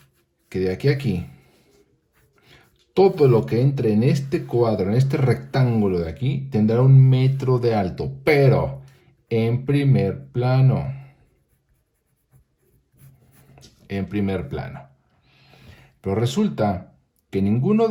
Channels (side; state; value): both; identical; correlation 1.00